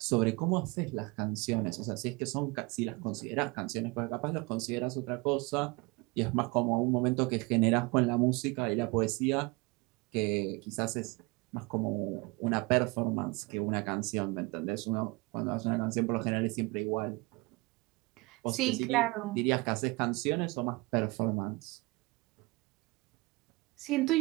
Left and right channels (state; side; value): quieter; left; 25.5 dB